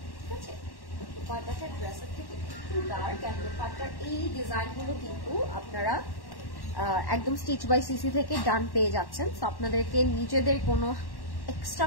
ঠিক আছে? দোপাট্টাটা ড্রেসের থেকে একটু ডার্ক, অ্যান্ড দোপাট্টার এই ডিজাইনগুলো কিন্তু আপনারা একদম স্টিচ বাই সিসি থেকে ডান পেয়ে যাচ্ছেন। সো আপনাদেরকে নিজেদের কোনো এক্সট্রা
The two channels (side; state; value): right; late; 1.1 ms